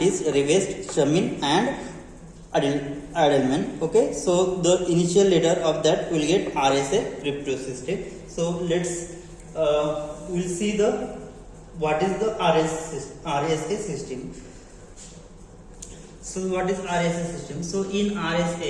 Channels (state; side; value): identical; both; correlation 1.00